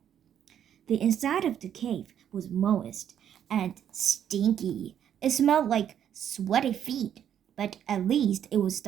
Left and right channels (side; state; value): left; quieter; 9.6 dB